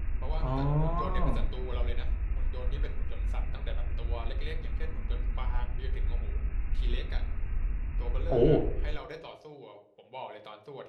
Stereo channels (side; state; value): both; identical; correlation 1.00